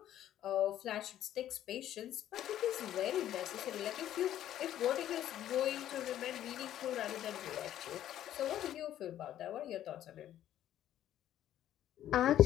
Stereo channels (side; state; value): right; quieter; 11.9 dB